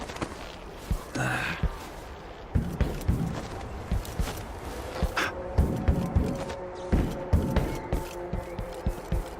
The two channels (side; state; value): both; identical; correlation 1.00